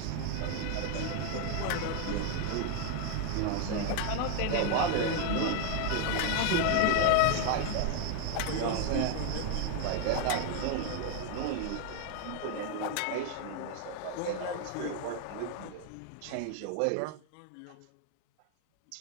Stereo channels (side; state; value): both; different; correlation 0.00